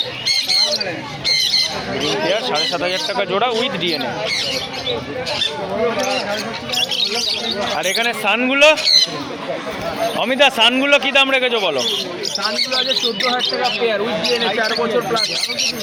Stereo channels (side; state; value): both; identical; correlation 1.00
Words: ব্রিডিং পেয়ার 7500 টাকা জোড়া উইথ ডিএনএ। আর এখানে সানগুলো অমিতা, সানগুলো কি দাম রেখেছো বলো? সানগুলো আছে 14000 টাকা পেয়ার উইথ ডিএনএ 4 বছর প্লাস।